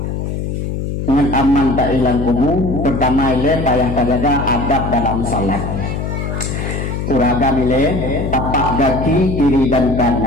dengan aman tak hilang kubu. Pertama ile payah kajaga adab dalam salat. Uragam ile tapak kaki kiri dan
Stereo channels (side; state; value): left; noise; hum, 3 dB below the sound